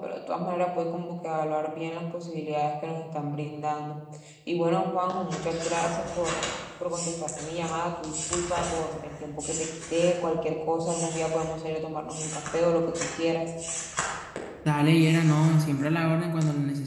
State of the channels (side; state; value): both; identical; correlation 1.00